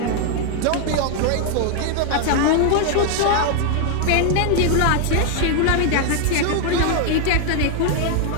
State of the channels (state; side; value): different; both; correlation 0.00